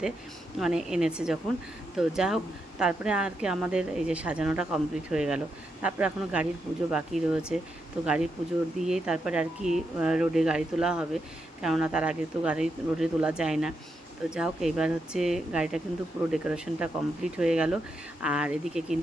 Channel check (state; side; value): normal; both; correlation 0.83